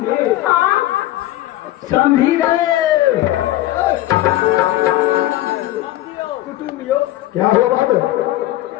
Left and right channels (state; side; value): quieter; right; 15.3 dB